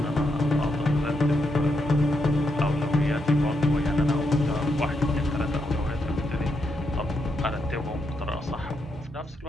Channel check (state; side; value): normal; both; correlation 0.81